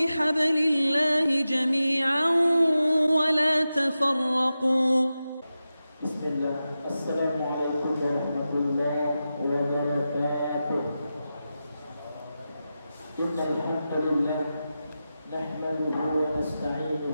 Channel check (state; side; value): inverted; both; correlation -0.92